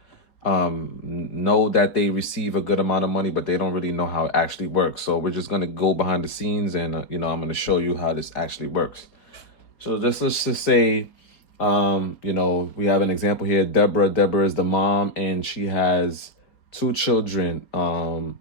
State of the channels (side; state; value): right; late; 4.7 ms